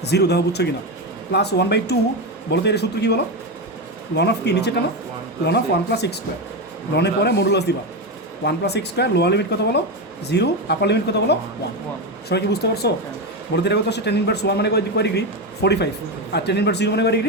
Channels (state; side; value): normal; both; correlation 0.13